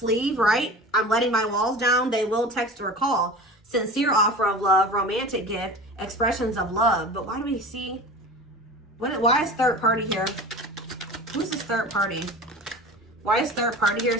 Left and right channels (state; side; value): normal; both; correlation 0.35